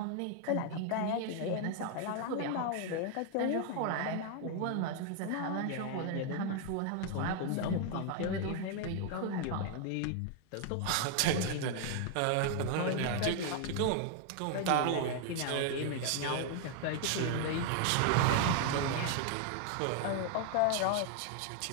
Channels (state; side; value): different; both; correlation 0.00